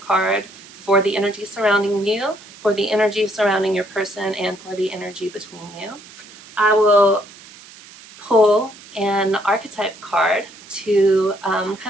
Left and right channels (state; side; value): noise; right; hiss, 20 dB below the sound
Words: for the energy surrounding you, for the energy surrounding your person, and for the energy between you. I will pull an archetype card to